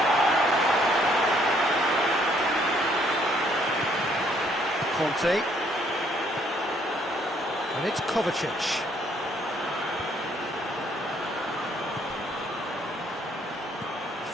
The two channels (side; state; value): both; normal; correlation 0.66